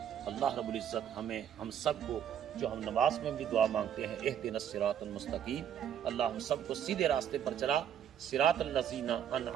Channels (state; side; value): quieter; left; 9.4 dB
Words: اللہ رب العزت ہم سب کو، جو ہم نماز میں بھی دعا مانگتے ہیں، اہدنا الصراط المستقیم، اللہ ہم سب کو سیدھے راستے پر چلا، صراط الذین